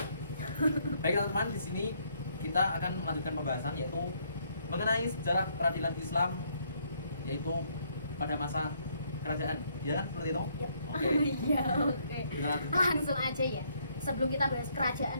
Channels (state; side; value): inverted; both; correlation -0.69